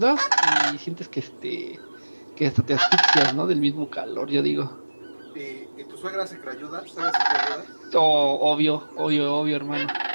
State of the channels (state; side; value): inverted; both; correlation -1.00